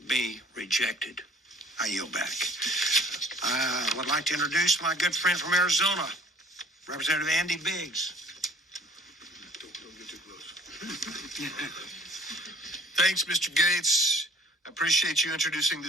be rejected. I yield back. I would like to introduce my good friend from Arizona, Representative Andy Biggs. Don't get too close. Thanks, Mr. Gates. I appreciate you introducing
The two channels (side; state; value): both; normal; correlation 0.52